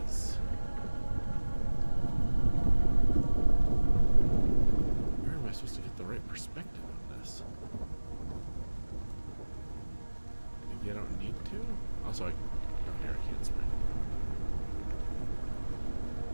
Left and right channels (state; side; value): inverted; both; correlation -1.00